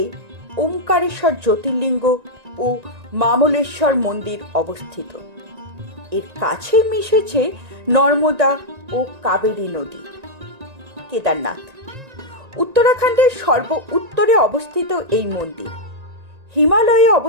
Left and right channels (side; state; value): left; late; 1.9 ms